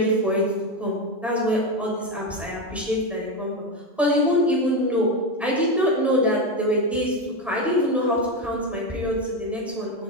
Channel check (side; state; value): both; normal; correlation 0.13